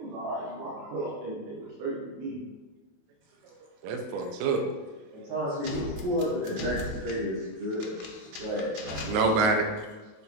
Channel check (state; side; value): late; left; 28 ms